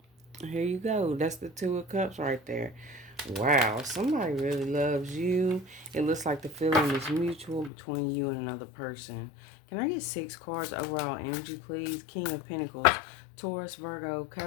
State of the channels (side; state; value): right; drops out; at 7.7 s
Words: here you go. That's the 2 of Cups right there. Wow, somebody really loves you. It looks like the feeling is mutual between you and another person. Can I get 6 cards overall energy, please? King of Pentacles, Taurus, Virgo,